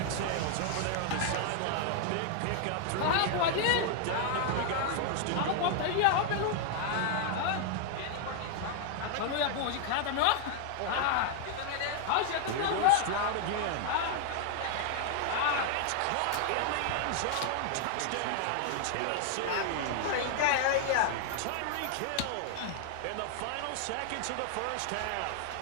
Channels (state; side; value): different; both; correlation 0.00